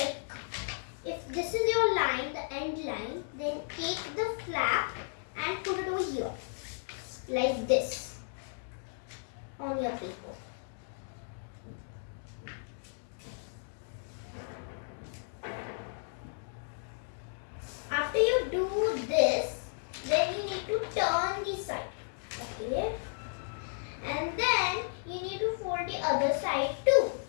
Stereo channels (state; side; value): silent; right; digital silence